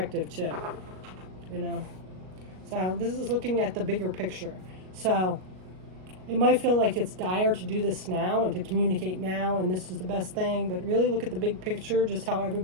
too. So this is looking at the bigger picture. So it might feel like it's dire to do this now and to communicate now, and this is the best thing, but really look at the big picture, just how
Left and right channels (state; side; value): late; left; 38 ms